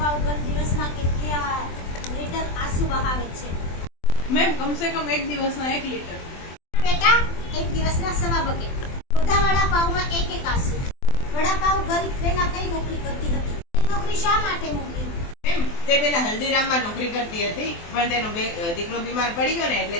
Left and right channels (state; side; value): late; right; 24 ms